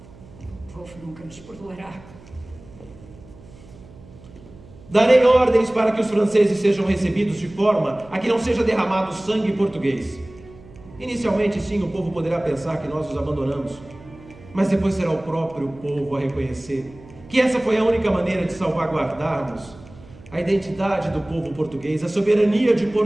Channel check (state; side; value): noise; right; hum, 21 dB below the sound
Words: O povo nunca nos perdoará. Darei ordens para que os franceses sejam recebidos de forma a que não seja derramado sangue português. Inicialmente, sim, o povo poderá pensar que nós os abandonamos, mas depois será o próprio povo a reconhecer que essa foi a única maneira de salvaguardarmos a identidade do povo português, a soberania de